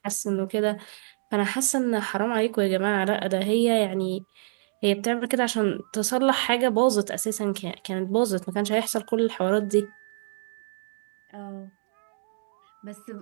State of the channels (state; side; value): silent; left; digital silence